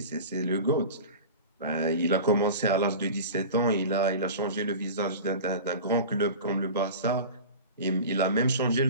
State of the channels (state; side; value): inverted; both; correlation -0.34